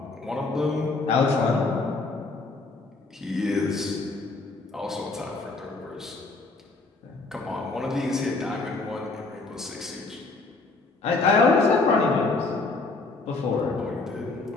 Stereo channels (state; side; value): quieter; right; 3.6 dB